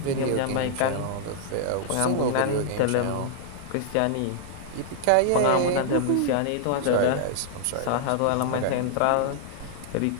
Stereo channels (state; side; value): different; both; correlation -0.01